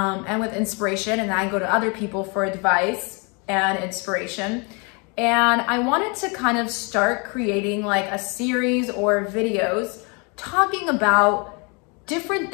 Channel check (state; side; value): quieter; right; 32.2 dB